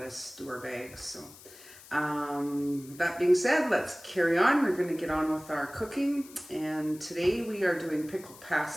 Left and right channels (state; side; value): noise; left; hiss, 20 dB below the sound